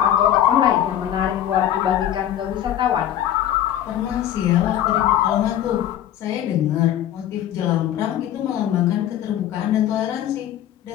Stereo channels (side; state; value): right; quieter; 11.4 dB